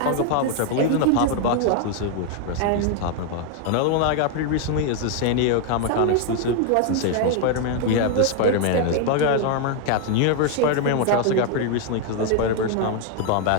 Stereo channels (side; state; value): both; different; correlation 0.00